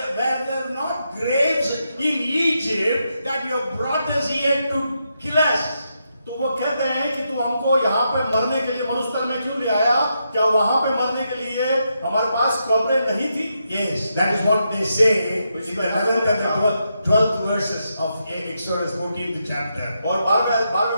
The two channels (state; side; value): inverted; both; correlation -0.83